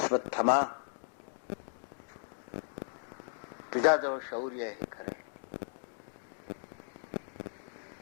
तुझ्याजवळ शौर्य आहे खरं,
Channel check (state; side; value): silent; right; 54 dB below the other